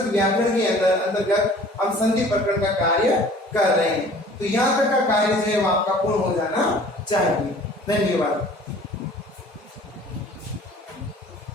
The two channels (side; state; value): both; normal; correlation 0.49